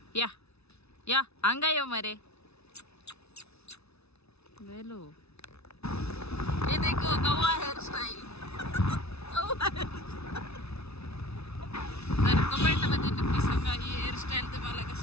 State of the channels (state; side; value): late; right; 0.80 ms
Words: या या अंगा यो मरे वेलो. ये देखो गवा हेअर स्टाईल. तर कमेंट मध्ये नक्की सांगा ही हेअरस्टाईल तुम्हाला